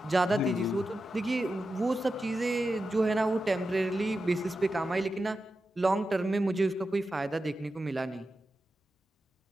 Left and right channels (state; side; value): normal; both; correlation 0.91